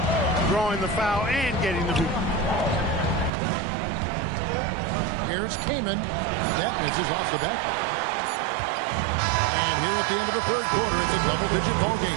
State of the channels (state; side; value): drops out; left; at 3.3 s